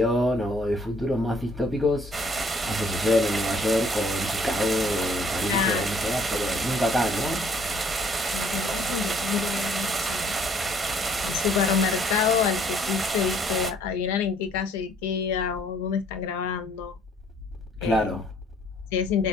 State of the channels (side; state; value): both; normal; correlation 0.61